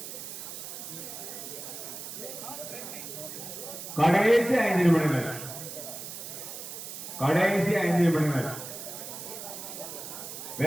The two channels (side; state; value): right; noise; hiss, 9 dB below the sound